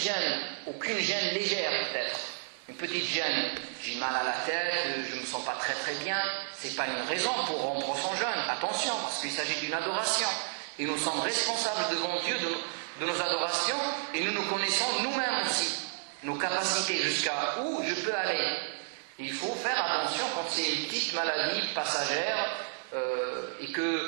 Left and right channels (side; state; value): left; silent; 57 dB below the other